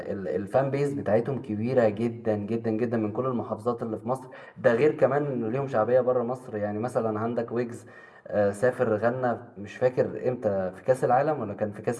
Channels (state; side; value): identical; both; correlation 1.00